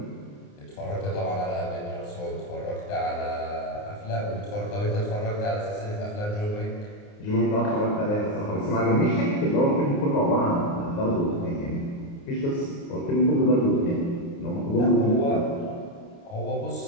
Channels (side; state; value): right; late; 29 ms